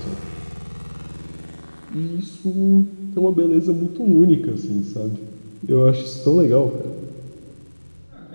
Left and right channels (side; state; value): both; inverted; correlation -1.00